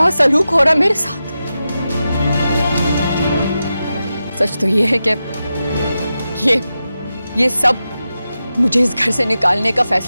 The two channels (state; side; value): inverted; both; correlation -0.91